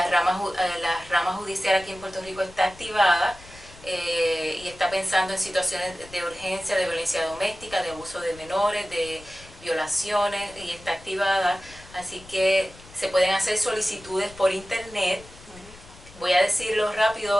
rama judicial aquí en Puerto Rico está activada y está pensando en situaciones de urgencia, de violencia doméstica, de abuso de menores, de violaciones, y está activada. Así que se pueden hacer solicitudes por internet. Voy a decirlo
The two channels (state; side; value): noise; left; rumble, 21 dB below the sound